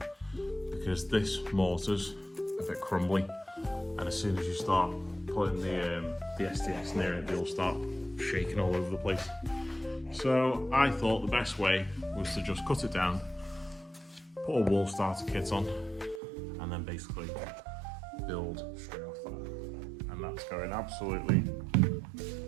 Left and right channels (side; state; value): left; drops out; at 16.2 s